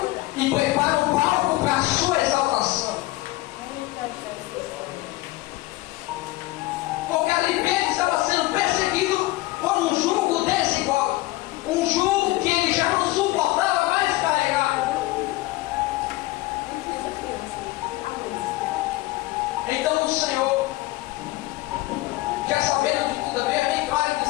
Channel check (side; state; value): right; quieter; 19.1 dB